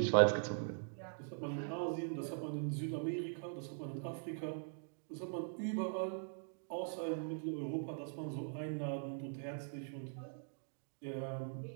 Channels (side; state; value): left; silent; digital silence